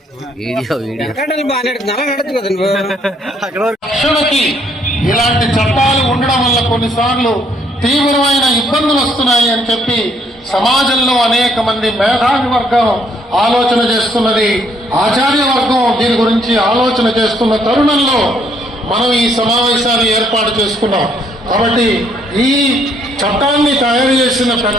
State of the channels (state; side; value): normal; both; correlation 0.68